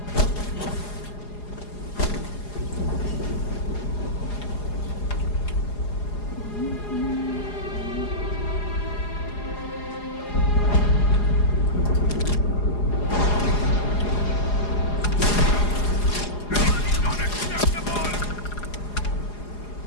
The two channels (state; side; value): late; right; 4.8 ms